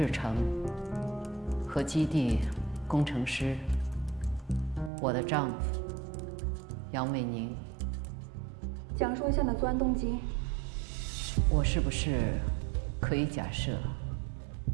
成和基地工程师，我的丈夫杨伟宁。讲述一下你的作案动机。我是不是可以假设，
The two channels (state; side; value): drops out; left; at 4.9 s